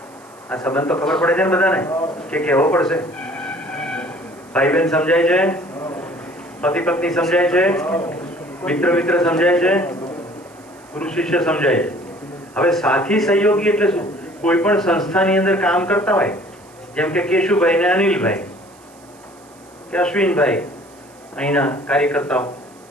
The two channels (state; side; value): noise; right; hiss, 27 dB below the sound